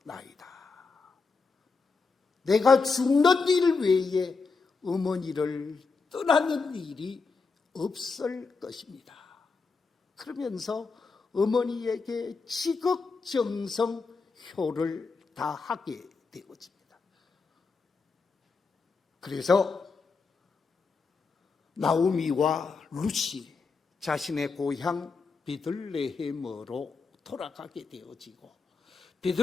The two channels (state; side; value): quieter; right; 4.5 dB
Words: 내가 죽는 일 외에 어머니를 떠나는 일이 없을 것입니다. 그러면서 어머니에게 지극정성효를 다하게 되어집니다. 그래서 나오미와 룻이 자신의 고향 베들레헴으로 돌아가게 되어지고